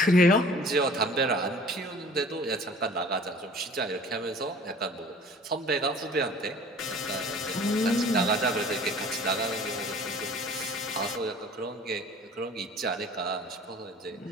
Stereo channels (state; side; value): normal; both; correlation 0.47